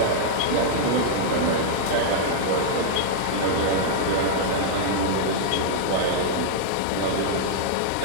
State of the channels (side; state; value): both; different; correlation -0.02